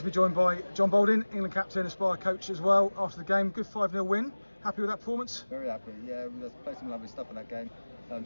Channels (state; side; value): inverted; both; correlation -1.00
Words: be joined by John Balding, England captain, Aspire coach as well. After the game, good 5-0 win. Happy with that performance? Very happy, yeah. We played some lovely stuff in that game,